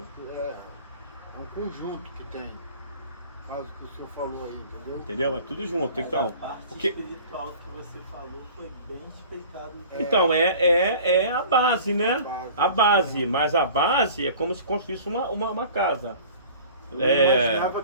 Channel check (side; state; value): both; inverted; correlation -0.44